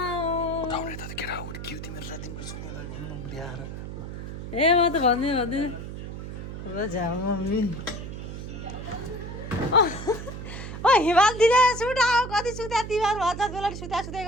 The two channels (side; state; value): right; noise; hum, 8 dB below the sound